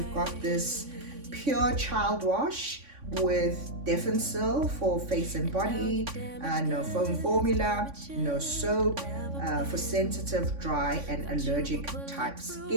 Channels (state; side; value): late; left; 3.5 ms